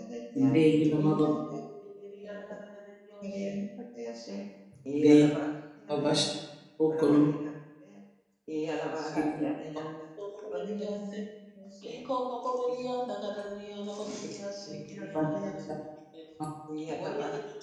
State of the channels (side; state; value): both; identical; correlation 1.00